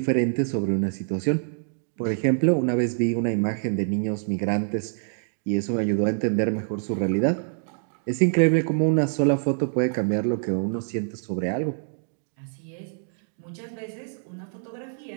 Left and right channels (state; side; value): silent; left; digital silence